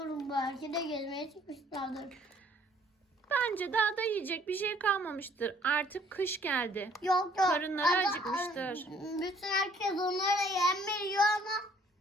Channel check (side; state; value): both; normal; correlation 0.60